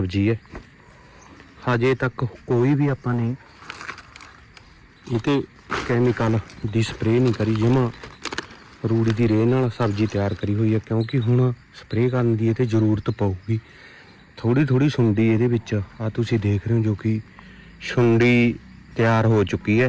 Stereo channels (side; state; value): both; identical; correlation 1.00